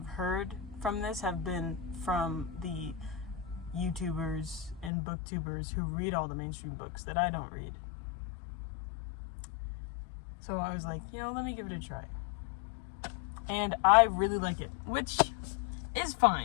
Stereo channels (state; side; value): drops out; right; at 4.9 s